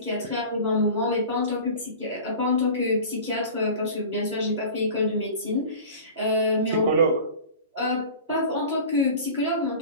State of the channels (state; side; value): inverted; both; correlation -0.37